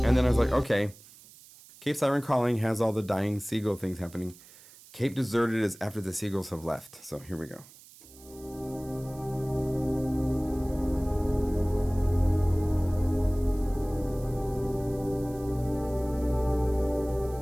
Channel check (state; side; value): noise; right; hiss, 22 dB below the sound